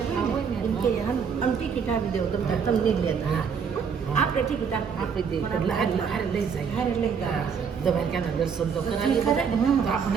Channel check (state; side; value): quieter; left; 6.5 dB